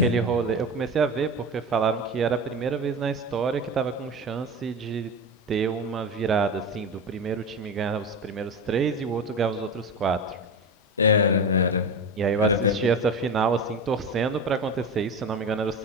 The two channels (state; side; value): normal; both; correlation 0.25